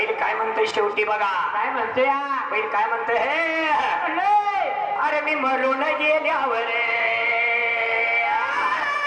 काय म्हणतोय शेवटी बघा काय म्हणतोय बैल काय म्हणतोय हे अरे मी मरून गेल्यावर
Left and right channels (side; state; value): both; identical; correlation 1.00